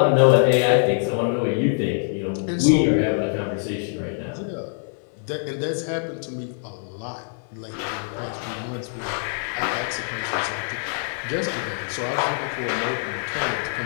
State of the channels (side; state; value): right; silent; 62 dB below the other